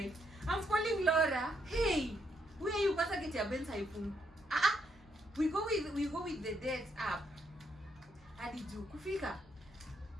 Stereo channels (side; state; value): both; normal; correlation 0.76